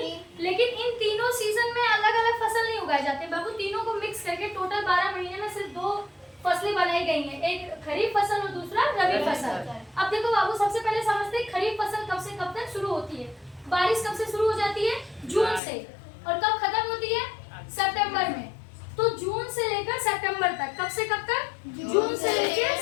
लेकिन इन तीनों सीजन में अलग अलग फसल नहीं उगाए जाते बाबू। तीनों को मिक्स करके टोटल 12 महीने में सिर्फ 2 फसलें बनाई गई हैं, एक खरीफ फसल और दूसरा रबी फसल। अब देखो बाबू, सबसे पहले समझते हैं खरीफ फसल कब से कब तक शुरू होती है। बारिश कब से शुरू हो जाती है? जून से। और कब खत्म होती है? सितंबर में। तो जून से लेकर सितंबर तक। कब से कब तक? जून से लेकर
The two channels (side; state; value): right; drops out; at 15.6 s